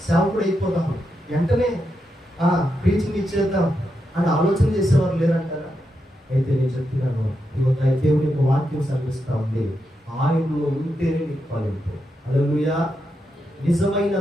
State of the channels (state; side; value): normal; both; correlation 0.85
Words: సేవకుడు అయిపోతాం, వెంటనే ప్రీచింగ్ ఇచ్చేద్దాం అని ఆలోచన చేసేవారు లేరంటారా? అయితే నేను చెప్తున్నాను, దేవుని యొక్క వాక్యం సర్విస్తూ ఉంది, ఆయనలో ఉంటేనే నీకు ఫలింపు. హల్లెలూయా. నిజమైన